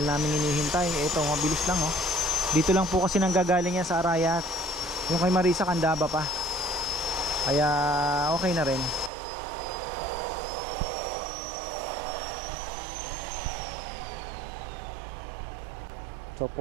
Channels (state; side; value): drops out; left; at 9.1 s